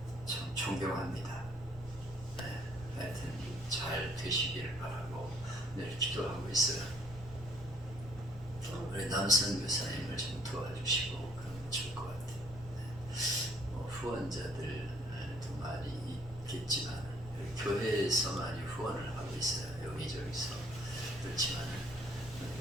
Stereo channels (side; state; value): both; normal; correlation 0.62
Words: 참 존경합니다. 하여튼 잘 되시기를 바라고 늘 기도하고 있어요. 우리 남선 교사님을 좀 도와주시고 그러면 좋을 것 같아요. 후원자들도 많이 있겠지만 교회에서 많이 후원을 하고 있어요. 여기저기서. 그렇지만